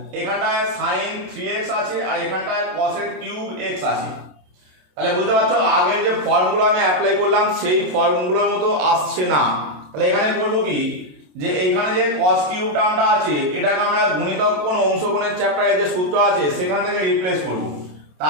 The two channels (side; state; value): left; late; 27 ms